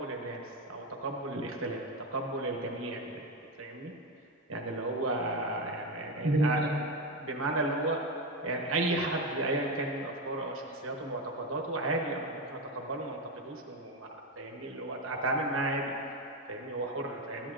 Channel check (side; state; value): both; normal; correlation 0.13